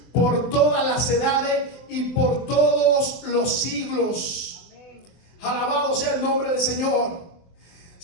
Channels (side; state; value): right; late; 23 ms